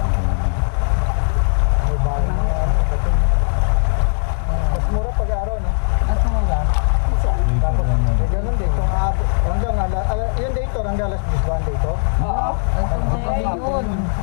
May bahay na ano, bato. Mas mura pag-araw, no? Nasa mura. Tapos, ganun din. Kung hanggang, yung dator, hanggang alas 10 ba ang dator? Oo. Hanggang gabi yun.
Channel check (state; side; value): silent; right; 64 dB below the other